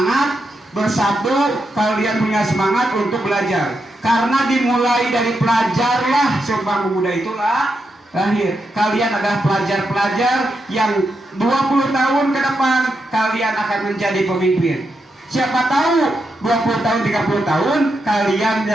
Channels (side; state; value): both; normal; correlation 0.84